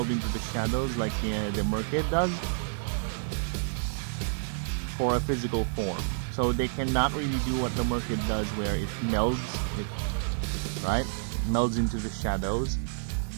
into the shadows like the Merkid does for a physical form. So they cannot really do what the Merkid does where it melds, right? It melds into the shadows.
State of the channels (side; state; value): left; silent; digital silence